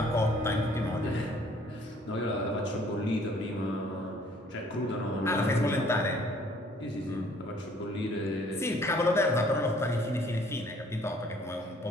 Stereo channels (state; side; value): normal; both; correlation 0.59